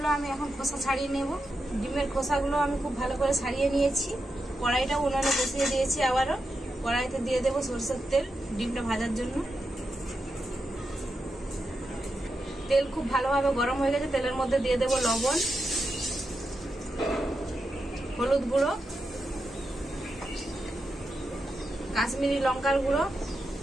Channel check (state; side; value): normal; both; correlation 0.87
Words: আমি এখন খোসা ছাড়িয়ে নেব। ডিমের খোসাগুলো আমি খুব ভালো করে ছাড়িয়ে নিয়েছি। কড়াইটা উনুনে বসিয়ে দিয়েছি। আবারও কড়াইতে দিয়ে দেবো সরষের তেল ডিমটা ভাজার জন্য। তেল খুব ভালোভাবে গরম হয়ে গেছে। তেলের মধ্যে দিয়ে দেবো লবণ, হলুদ গুঁড়ো, কাশ্মীরি লঙ্কার গুঁড়ো।